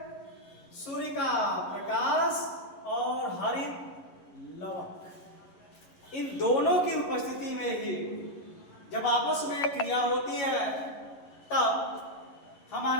सूर्य का प्रकाश और हरित लवक, इन दोनों की उपस्थिति में ही जब आपस में क्रिया होती है तब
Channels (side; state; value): right; late; 11 ms